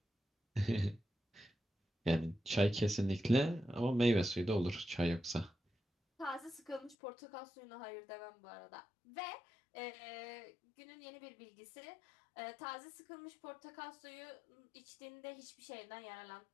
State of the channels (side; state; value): right; drops out; at 7.0 s